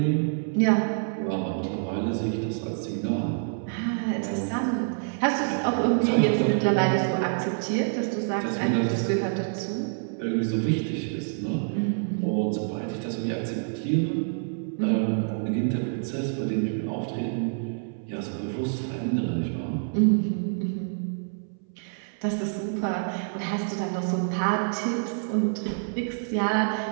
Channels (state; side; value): silent; left; 60 dB below the other